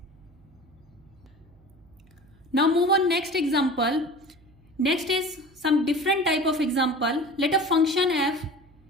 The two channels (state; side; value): noise; right; hum, 28 dB below the sound